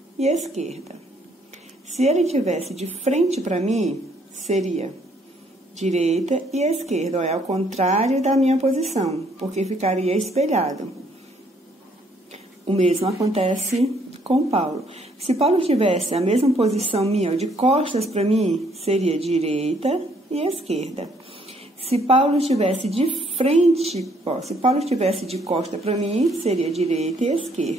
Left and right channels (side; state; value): both; normal; correlation 0.66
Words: e esquerda. Se ele estivesse de frente para mim, seria direita e esquerda, olha, ao contrário da minha posição, porque ficaria espelhado. O mesmo acontece com Paulo. Se Paulo tivesse a mesma posição minha, de costas para mim, seria direita e esquerda. Se Paulo estivesse de frente, se Paulo estivesse de costa para mim, seria direita e